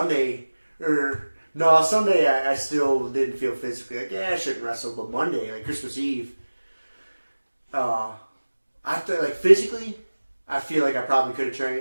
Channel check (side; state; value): both; inverted; correlation -1.00